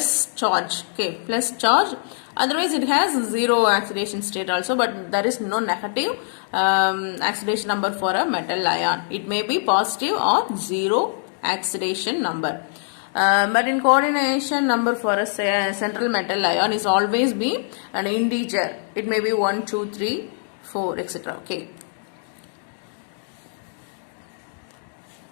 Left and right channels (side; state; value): right; silent; digital silence